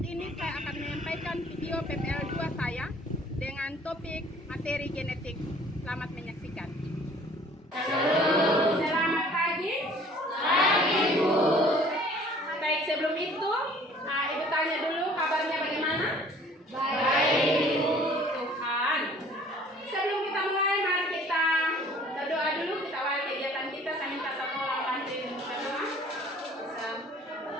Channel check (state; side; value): normal; both; correlation 0.53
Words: saya akan menyampaikan video PPL 2 saya dengan topik materi genetik. Selamat menyaksikan. Selamat pagi. Pagi, Bu. Baik, sebelum itu, Ibu tanya dulu kabarnya bagaimana? Baik, Bu. Tuhan. Sebelum kita mulai, mari kita berdoa dulu. Kita awali kegiatan kita. Saya minta satu orang bantuin berdoa.